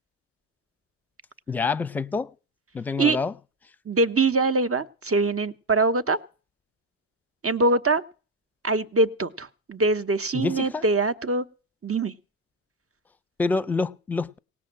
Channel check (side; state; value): both; normal; correlation 0.10